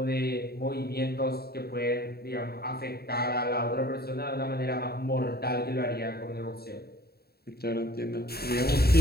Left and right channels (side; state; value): right; late; 0.46 ms